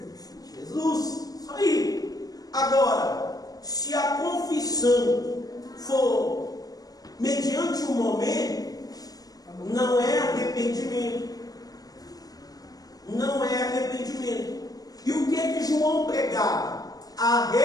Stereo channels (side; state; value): right; late; 0.18 ms